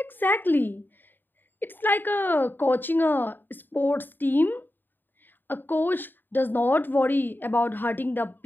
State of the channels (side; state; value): right; late; 0.092 ms